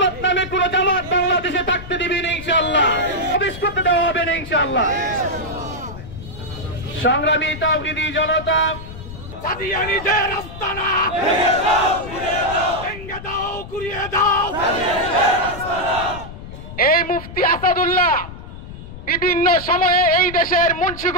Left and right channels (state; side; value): noise; left; rumble, 13 dB below the sound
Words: নামে কোন জামাত বাংলাদেশে থাকতে দিবে না ইনশাআল্লাহ, প্রবেশ করতে দেওয়া হবে না ইনশাআল্লাহ। সংগ্রামী তাওহীদি জনতা, কাদিয়ানীদের আস্তানা ভেঙে দাও, ঘুরিয়ে দাও। এই মুফতি আসাদুল্লাহ বিভিন্ন সময়ে এই দেশের